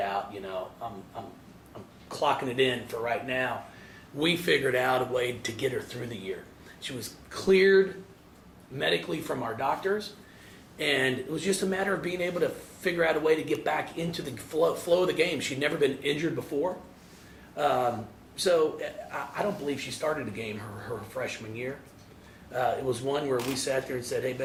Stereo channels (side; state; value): both; identical; correlation 1.00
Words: I'm clocking it in for right now, we figured out a way to get her through the year. She was cleared medically from our doctors, and it was just a matter of being able to figure out a way to get back into the flow of the game. She'd never been injured before. So I don't believe she started a game her freshman year. It was one where we sat there and said, hey,